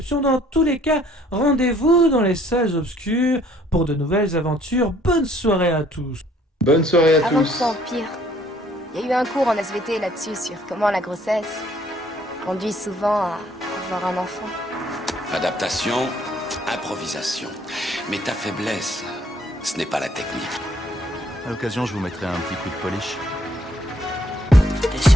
Dans tous les cas, rendez-vous dans les salles obscures pour de nouvelles aventures. Bonne soirée à tous. Bonne soirée à tous. Avant que ça empire, il y a eu un cours en SVT là-dessus sur comment la grossesse conduit souvent à avoir un enfant. Adaptation, improvisation. Mais ta faiblesse, ce n'est pas la technique. À l'occasion, je vous mettrai un petit coup de polish. T'es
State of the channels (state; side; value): normal; both; correlation 0.62